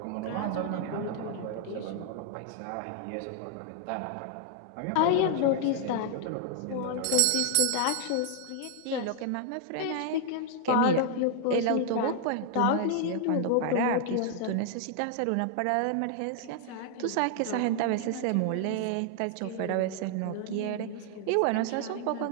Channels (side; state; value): both; different; correlation 0.00